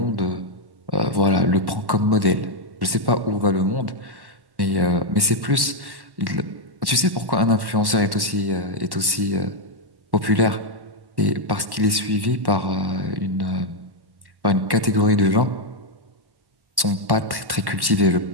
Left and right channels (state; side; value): late; left; 1.1 ms